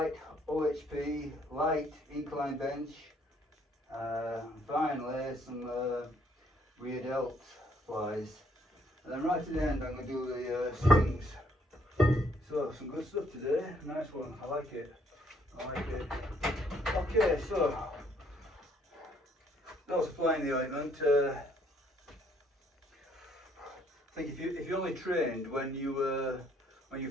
OHP, light incline bench, finally some rear delt flies. And then right at the end I'm going to do the swings. So some good stuff today, nice one, I like it. Okay, so that was flying the ointment. I think if you only trained when you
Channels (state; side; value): normal; both; correlation 0.67